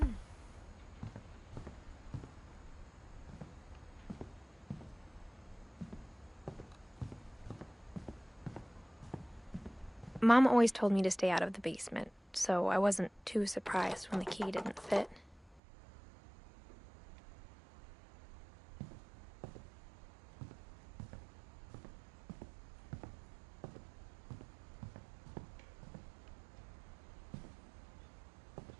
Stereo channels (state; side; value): drops out; left; at 15.6 s